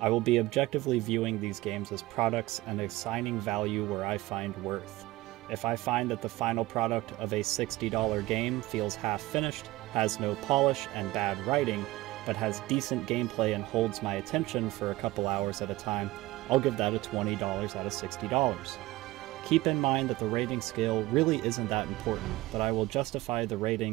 will be objectively viewing these games as products and assigning value where I find worth. If I find that the final product of a $60 game feels half-finished, has no polish and bad writing, but has decent gameplay and holds my attention for a couple hours at a time, I'll give that a $20 out of $60. Keep in mind that the rating scale really isn't that important, but I will justify the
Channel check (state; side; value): quieter; left; 18.3 dB